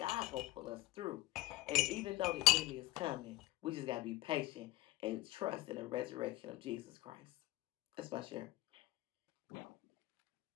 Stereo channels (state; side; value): quieter; right; 18.7 dB